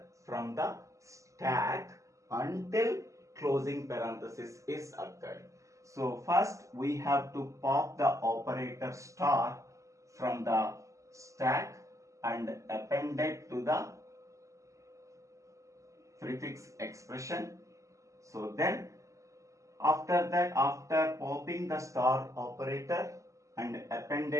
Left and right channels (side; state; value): left; late; 0.15 ms